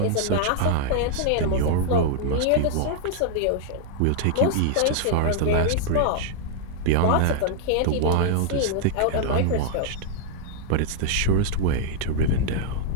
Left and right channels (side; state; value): both; different; correlation -0.01